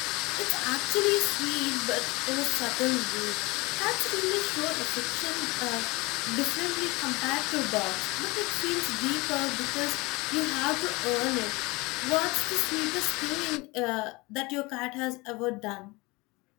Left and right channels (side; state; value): right; quieter; 24.2 dB